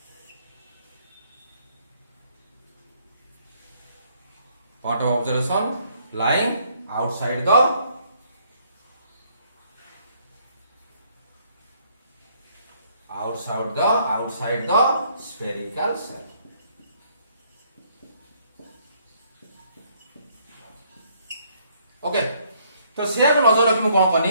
Point of observation lying outside the outside the spherical cell. Okay तो से नजर रखी कौन कनी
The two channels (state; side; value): inverted; both; correlation -0.67